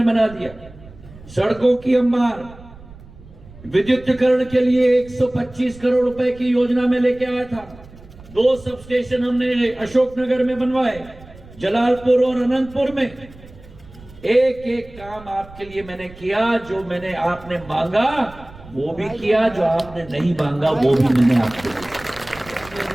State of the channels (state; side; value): noise; right; rumble, 20 dB below the sound